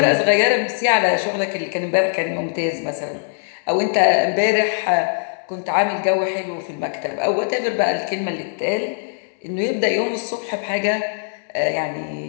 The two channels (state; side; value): silent; right; 65 dB below the other